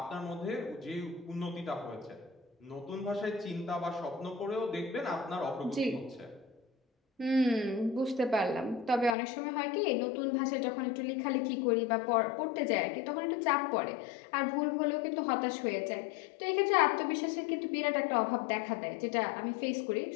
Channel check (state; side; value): drops out; right; at 9.1 s